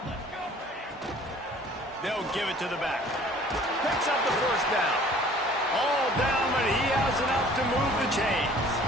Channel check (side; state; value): both; normal; correlation 0.52